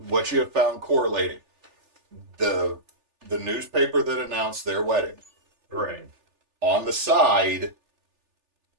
what you have found correlating the newspaper that announced their wedding Right. on the side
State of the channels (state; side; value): late; left; 3.4 ms